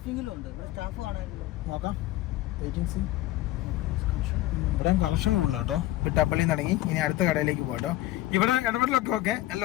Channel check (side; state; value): right; quieter; 15.9 dB